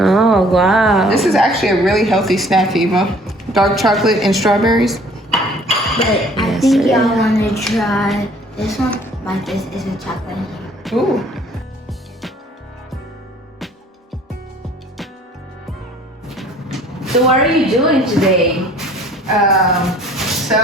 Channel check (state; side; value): normal; both; correlation 0.55